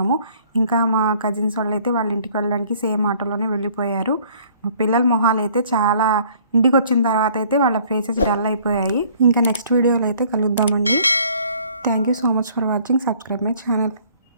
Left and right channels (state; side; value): inverted; both; correlation -0.57